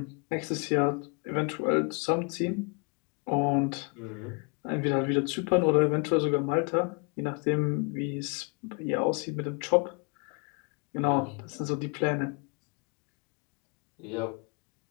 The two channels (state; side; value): quieter; right; 36.0 dB